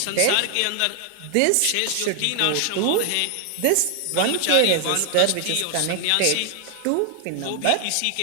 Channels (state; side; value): different; both; correlation 0.00